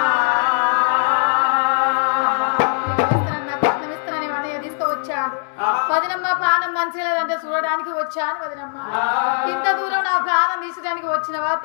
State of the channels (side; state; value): right; silent; digital silence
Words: ఇస్తానని అన్నయ్య తీసుకువచ్చాడు. వదినమ్మ ప్రాణం మంచిగా లేదంటే చూడడానికి వచ్చాను. వదినమ్మ ఇంత దూరం నా ప్రాణం తీసడానికి వచ్చినవా